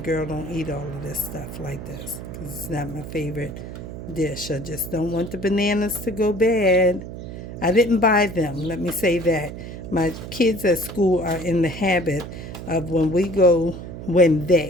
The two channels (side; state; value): right; noise; hum, 10 dB below the sound